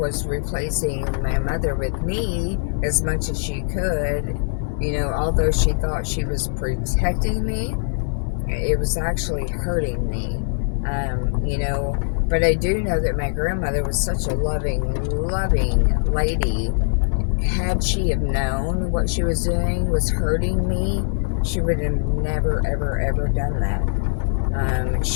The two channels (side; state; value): right; silent; digital silence